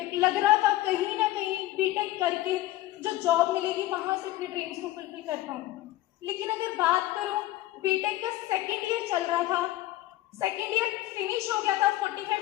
लग रहा था कहीं ना कहीं बीटेक करके जो जॉब मिलेगी वहां से अपने ड्रीम्स को फुलफिल कर पाऊँ। लेकिन अगर बात करूँ, बीटेक का 2nd ईयर चल रहा था, 2nd ईयर फिनिश हो गया था,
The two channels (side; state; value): right; quieter; 16.0 dB